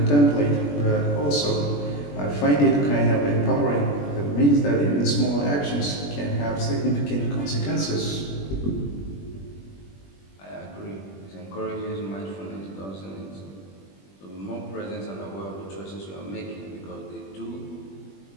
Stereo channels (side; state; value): right; late; 21 ms